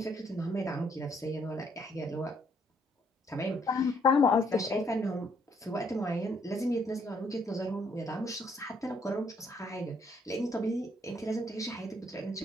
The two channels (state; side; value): normal; both; correlation 0.69